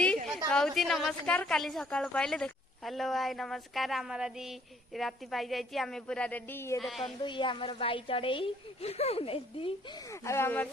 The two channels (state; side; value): normal; both; correlation 0.62